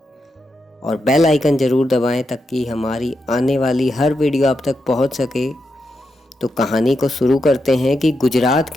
और बेल आइकन ज़रूर दबाएं ताकि हमारी आने वाली हर वीडियो आप तक पहुंच सके। तो कहानी को शुरू करते हैं कि गुजरात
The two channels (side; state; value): both; normal; correlation 0.85